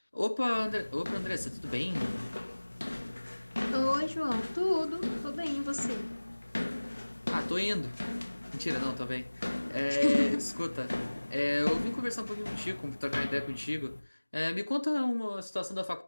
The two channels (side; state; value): both; inverted; correlation -1.00